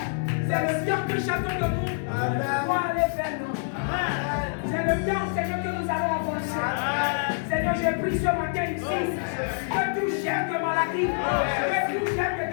c'est le temps que chacun de nous doit aller vers nous. C'est le temps, Seigneur, que nous allons avancer. Seigneur, j'ai pris ce matin ici que tout chef de maladie, que tout chef de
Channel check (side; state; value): right; silent; digital silence